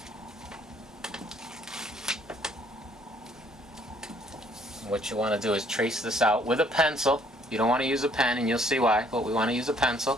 And what you want to do is trace this out with a pencil. You don't want to use a pen, and you'll see why, but we want to use a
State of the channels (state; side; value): normal; both; correlation 0.63